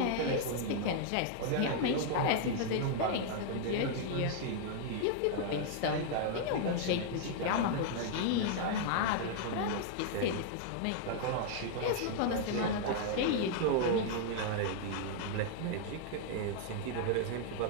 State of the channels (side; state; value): both; different; correlation -0.01